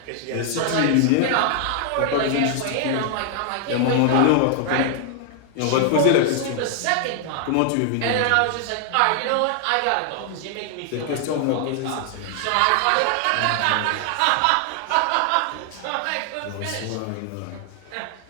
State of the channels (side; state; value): both; different; correlation 0.00